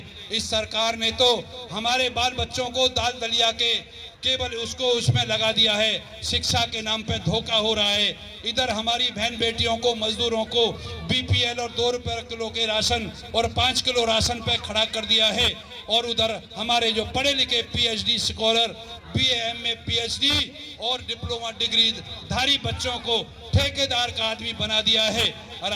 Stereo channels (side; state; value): both; identical; correlation 1.00